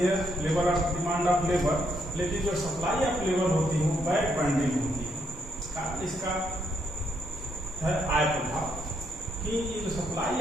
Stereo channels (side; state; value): both; normal; correlation 0.75